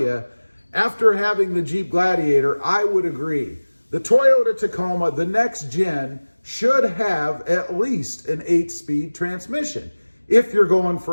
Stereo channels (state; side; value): inverted; both; correlation -1.00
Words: after having the Jeep Gladiator, I would agree. The Toyota Tacoma, the next gen, should have at least an 8-speed transmission if you're going